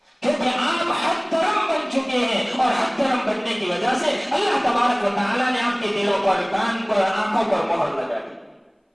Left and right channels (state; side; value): identical; both; correlation 1.00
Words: کیونکہ آپ حد درم بن چکے ہیں، اور حد درم بننے کی وجہ سے اللہ تبارک و تعالیٰ نے آپ کے دلوں پر، کان پر، آنکھوں پر مہر لگا دی۔